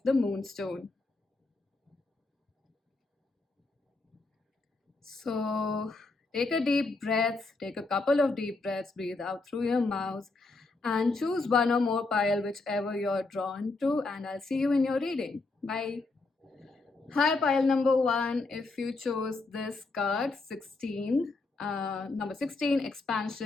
the Moonstone. So take a deep breath, take a couple of deep breaths, breathe out through your mouth, and choose one or more pile, whichever you're drawn to, and I'll see you in your reading. Bye. Hi, pile number 1. If you chose this card, 16, number 16,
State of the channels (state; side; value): quieter; right; 3.5 dB